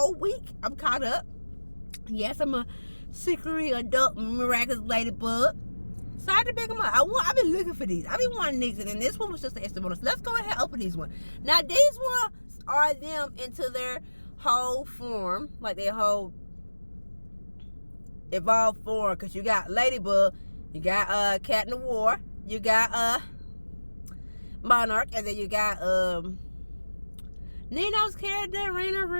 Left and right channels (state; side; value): inverted; both; correlation -1.00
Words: week. I'm caught up. Yes, I'm a secretly adult Miraculous Ladybug. So I had to pick them up. I've been looking for these. I've been wanting these, and then this one was just an extra bonus. Let's go ahead and open these ones. Now these ones are them into their whole form, like their whole evolved form. Because you got Ladybug, you got Cat in the War, you got Monarch, and then you got Nino's character, Raina